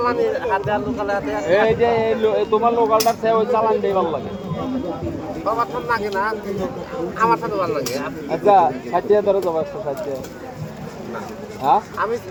হাতে আর লোকালে হাতে এই যে তোমার লোকালটার চেয়ে ওই চালান দেই ভালো লাগে বাবা ঠান্ডা লাগে না কিন্তু আমার সাথে ভালো লাগে আচ্ছা 60 ধরে যাবো 160 হ্যাঁ আমি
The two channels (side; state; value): both; identical; correlation 1.00